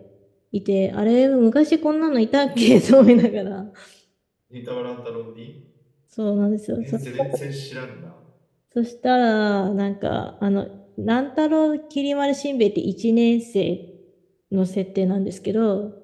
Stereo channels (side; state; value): both; identical; correlation 1.00